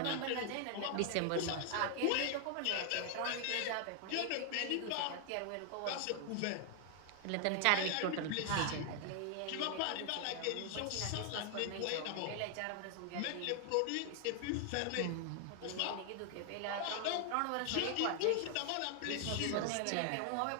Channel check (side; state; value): both; different; correlation 0.00